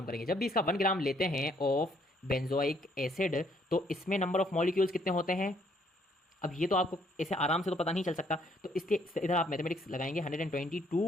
करेंगे, जब भी इसका 1 ग्राम लेते हैं ऑफ बेंजोइक एसिड तो इसमें नंबर ऑफ मॉलिक्यूल्स कितने होते हैं। अब ये तो आपको ऐसे आराम से तो पता नहीं चल सकता, तो इसके इधर आप मैथमेटिक्स लगाएंगे।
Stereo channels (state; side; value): normal; both; correlation 0.67